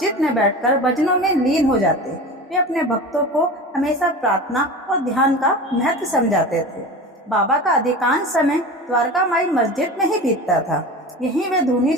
में बैठकर भजनों में लीन हो जाते। वे अपने भक्तों को हमेशा प्रार्थना और ध्यान का महत्व समझाते थे। बाबा का अधिकांश समय द्वारका माई मस्जिद में ही बीतता था। यहीं वे धूनी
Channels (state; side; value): normal; both; correlation 0.32